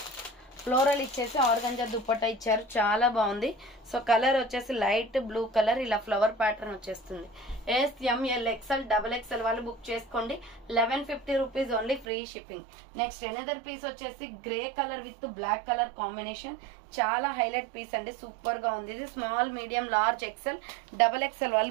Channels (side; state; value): left; drops out; at 12.1 s